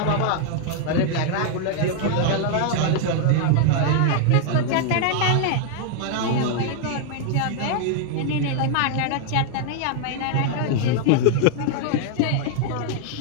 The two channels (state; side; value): different; both; correlation 0.00